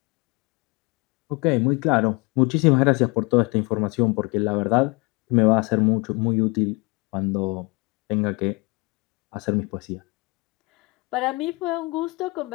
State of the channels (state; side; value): quieter; right; 27.0 dB